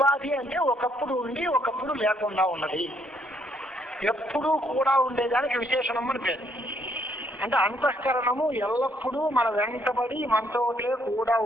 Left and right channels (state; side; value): normal; both; correlation 0.70